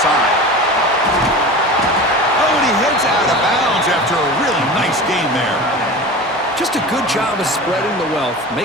side. Oh, and he heads out of bounds after a really nice game there. Just a good job of spreading the wealth,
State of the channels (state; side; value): normal; both; correlation 0.33